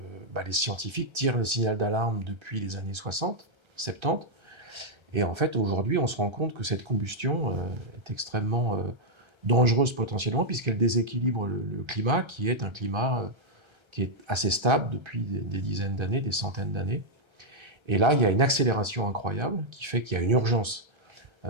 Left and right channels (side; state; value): left; late; 1.3 ms